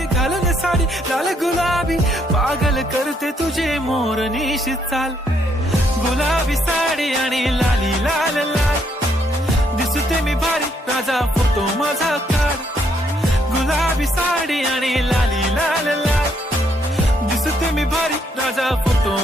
घालून साडी लाल गुलाबी, पागल करते तुझे मोरनीशी चाल. गुलाबी साडी आणि लाली लाल लाल, दिसते मी भारी राजा फोटो माझा काढ. गुलाबी साडी आणि लाली लाल लाल, दिसते मी भारी राजा फोटो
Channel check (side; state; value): both; normal; correlation 0.72